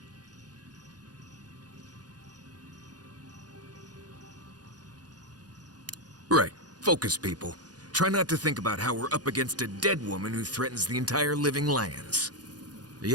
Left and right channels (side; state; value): left; late; 0.69 ms